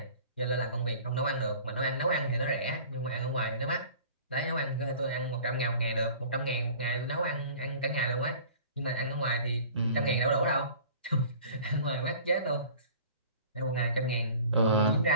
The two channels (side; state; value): both; inverted; correlation -0.45